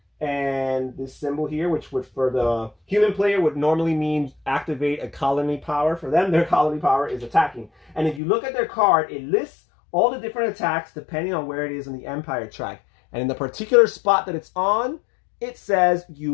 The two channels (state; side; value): drops out; right; at 8.2 s